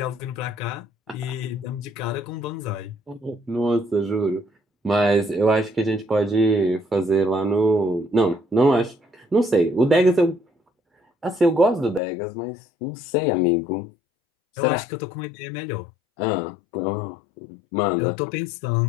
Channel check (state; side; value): drops out; right; at 12.0 s